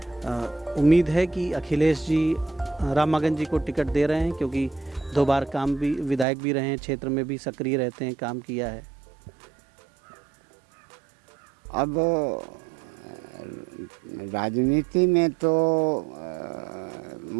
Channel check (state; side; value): drops out; left; at 6.2 s